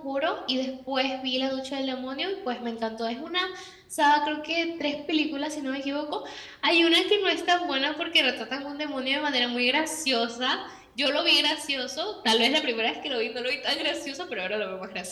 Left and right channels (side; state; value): both; identical; correlation 1.00